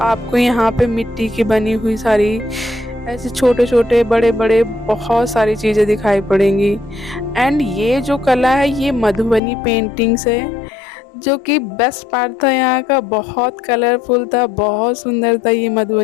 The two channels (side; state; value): right; drops out; at 9.4 s